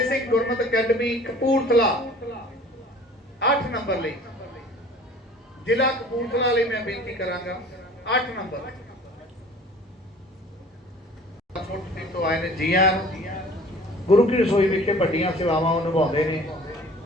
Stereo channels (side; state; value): both; normal; correlation 0.48